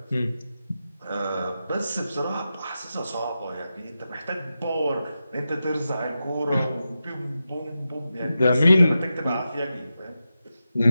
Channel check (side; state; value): both; inverted; correlation -0.90